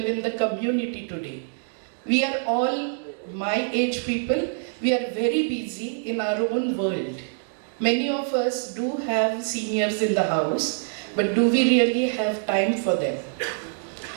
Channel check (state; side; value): silent; left; digital silence